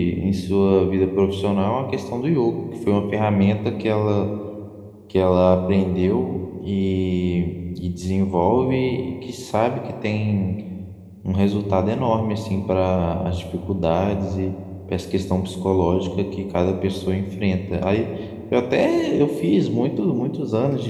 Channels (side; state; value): both; identical; correlation 1.00